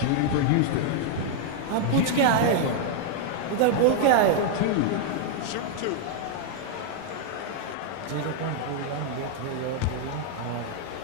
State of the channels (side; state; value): both; different; correlation 0.00